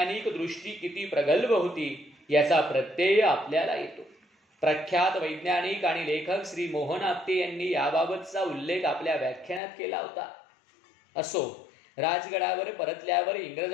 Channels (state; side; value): drops out; right; at 9.6 s